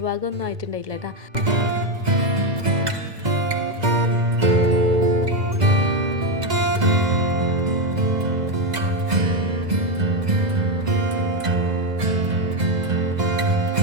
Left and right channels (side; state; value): left; late; 2.0 ms